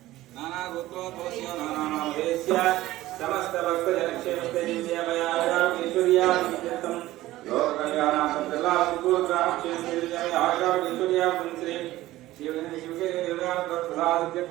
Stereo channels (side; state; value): left; quieter; 16.2 dB